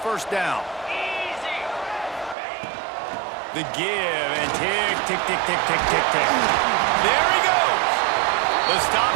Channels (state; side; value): drops out; left; at 2.4 s